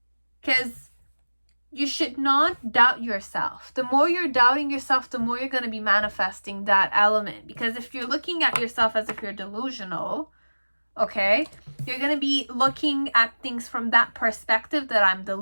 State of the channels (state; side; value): inverted; both; correlation -1.00